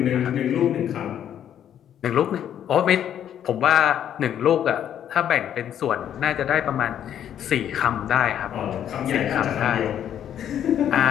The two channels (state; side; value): quieter; right; 10.0 dB